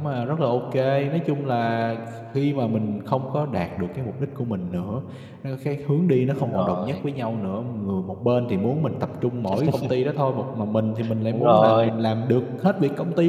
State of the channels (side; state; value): both; identical; correlation 1.00